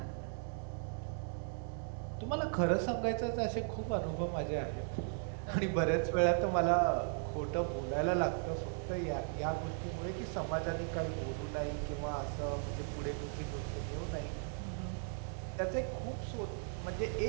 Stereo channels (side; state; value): left; silent; 53 dB below the other